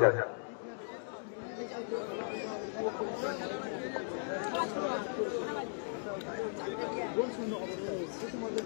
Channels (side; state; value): right; silent; digital silence